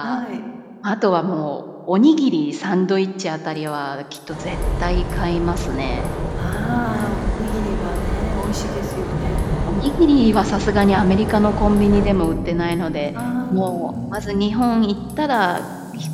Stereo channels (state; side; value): identical; both; correlation 1.00